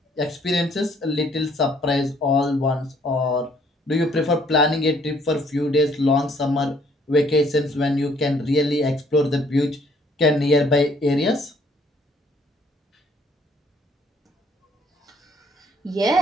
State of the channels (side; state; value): both; normal; correlation 0.63